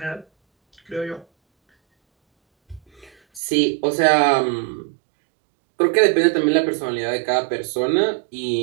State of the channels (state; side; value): drops out; left; at 3.4 s